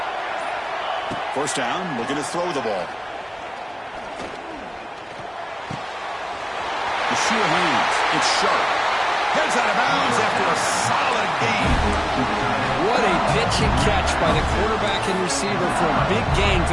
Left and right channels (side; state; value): both; identical; correlation 1.00